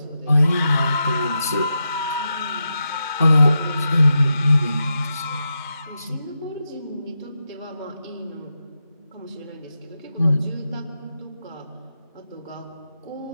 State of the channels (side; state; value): both; inverted; correlation -0.87